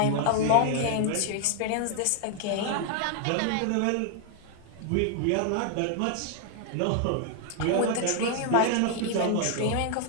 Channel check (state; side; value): different; both; correlation 0.00